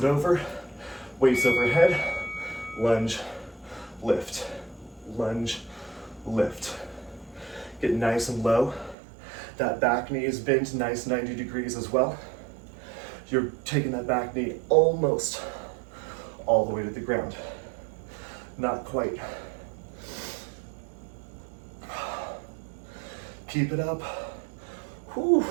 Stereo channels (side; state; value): left; drops out; at 9.0 s